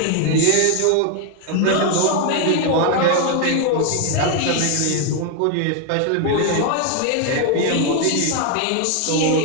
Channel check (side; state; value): both; different; correlation 0.01